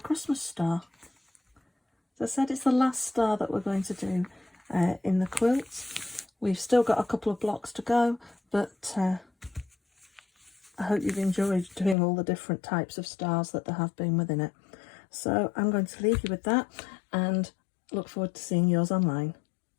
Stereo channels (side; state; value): right; drops out; at 12.0 s